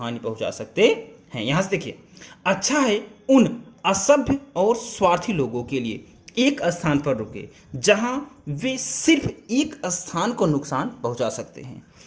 पहुंचा सकते हैं। यहां से देखिए, अच्छा है उन असभ्य और स्वार्थी लोगों के लिए एक स्थान पर रुके जहां वे सिर्फ एक स्थान को नुकसान पहुंचा सकते हैं।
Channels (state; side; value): identical; both; correlation 1.00